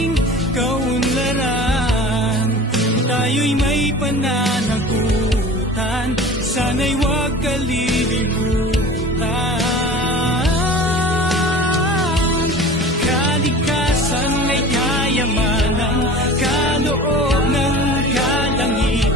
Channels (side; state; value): both; normal; correlation 0.39